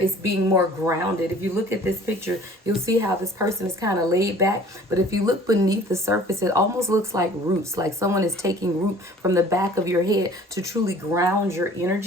being more grounded. If you look at this picture, you'll see how this person is kind of laid back. But if you look beneath the surface, it almost looks like roots, like someone is taking root from the back of your head to truly ground your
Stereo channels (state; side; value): normal; both; correlation 0.50